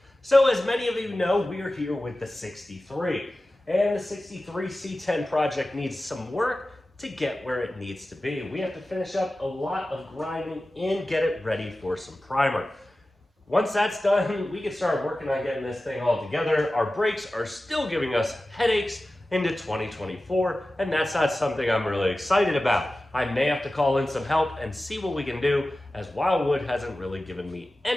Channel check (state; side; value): normal; both; correlation 0.95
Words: So as many of you know, we are here with the 63. And the 63 C10 project needs some work to get where it needs to be. We have to finish up a lot of grinding and get it ready for some primer. Once that's done, we can start working on getting this thing all together. Our brakes are still giving us headaches into 2024, and that's not something I'm really excited about. I may have to call in some help and see what we can do, as Wildwood hasn't really given me